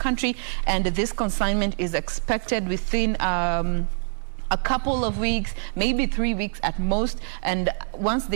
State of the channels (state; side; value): silent; left; 62 dB below the other